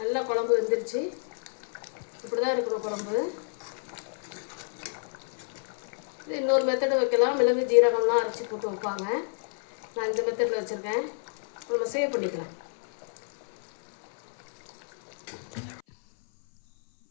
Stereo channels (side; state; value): right; silent; 56 dB below the other